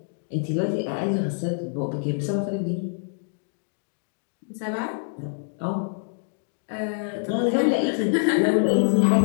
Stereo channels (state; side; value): silent; right; digital silence